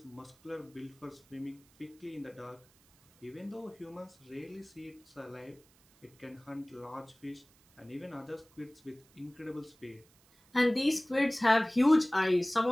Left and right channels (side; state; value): right; noise; hiss, 30 dB below the sound